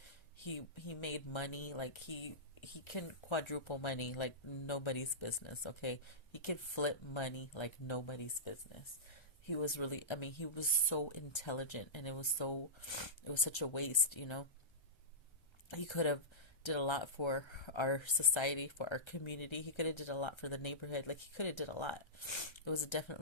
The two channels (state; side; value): late; right; 1.3 ms